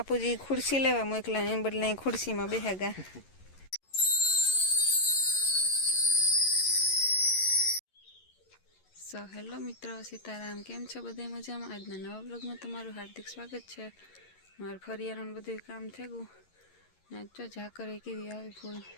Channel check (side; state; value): right; late; 11 ms